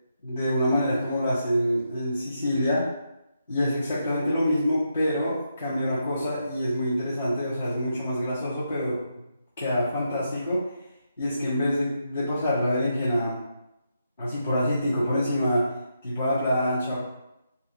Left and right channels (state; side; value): inverted; both; correlation -0.82